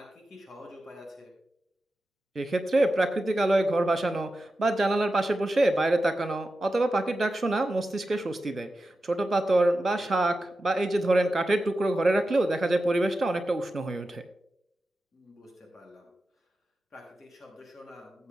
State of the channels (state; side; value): normal; both; correlation 0.92